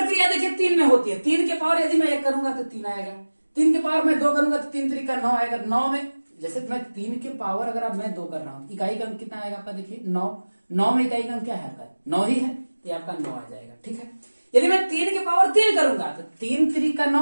देखिए 3 में होती है। 3 के पावर यदि मैं 1 करूंगा तो 3 आएगा, 3 के पावर में 2 करूंगा तो 3 3 का 9 आएगा। 9 में जैसे मैं 3 के पावर अगर अब मैं 2 कर रहा हूं, इकाई का अंक कितना आएगा आपका, देखिए 9 में इकाई का अंक क्या है आपका, 9 ही है, ये आपका 9 आ जाएगा, ठीक है। यदि मैं 3 के पावर 3 करूंगा तो 3 3 का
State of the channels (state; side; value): inverted; both; correlation -1.00